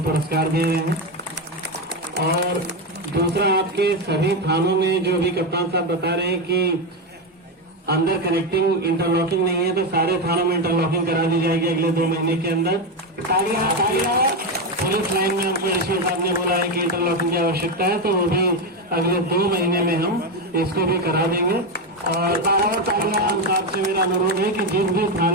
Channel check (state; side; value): normal; both; correlation 0.10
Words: पुरस्कार दे रहे हैं। और दूसरा, आपके सभी थानों में जो अभी कप्तान साहब बता रहे हैं कि अंदर कनेक्टिंग इंटरलॉकिंग नहीं है, तो सारे थानों में इंटरलॉकिंग करा दी जाएगी अगले 2 महीने के अंदर। पुलिस लाइन में हमको एसपी साहब ने बोला है कि इंटरलॉकिंग की आवश्यकता है, तो वो भी अगले 2 महीने में हम इसको भी करा देंगे। और कप्तान साहब से मेरा अनुरोध है कि जिस भी